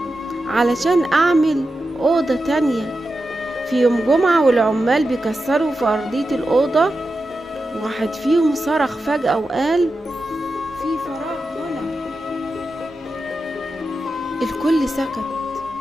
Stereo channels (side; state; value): both; normal; correlation 0.90